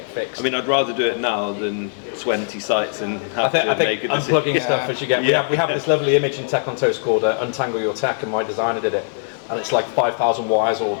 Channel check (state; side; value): silent; right; digital silence